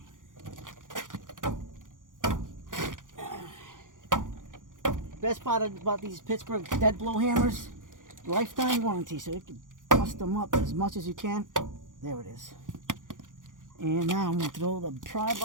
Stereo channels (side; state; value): left; late; 0.88 ms